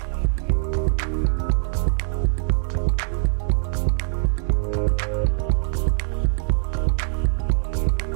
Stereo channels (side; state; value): left; silent; digital silence